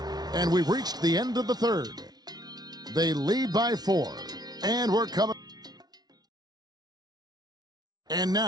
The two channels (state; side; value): late; left; 0.19 ms